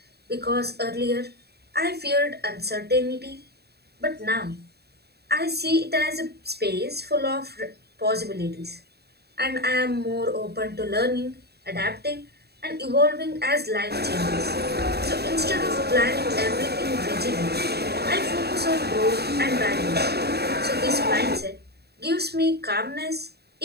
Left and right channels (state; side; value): late; left; 0.47 ms